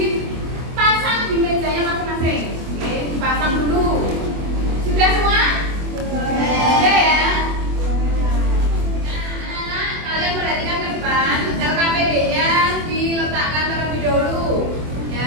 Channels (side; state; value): left; late; 24 ms